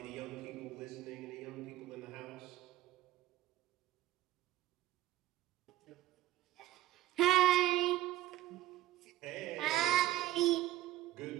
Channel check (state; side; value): quieter; left; 14.7 dB